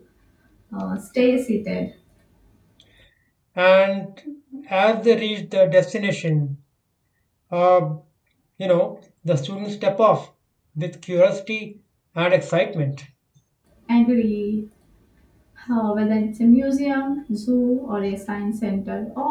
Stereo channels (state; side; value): identical; both; correlation 1.00